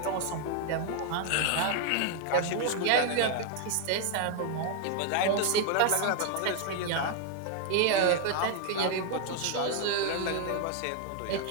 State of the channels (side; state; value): both; different; correlation 0.00